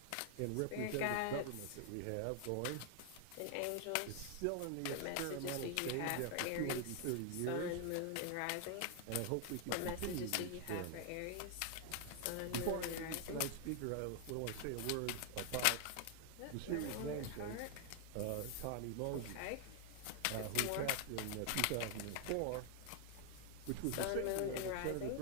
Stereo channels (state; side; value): different; both; correlation 0.00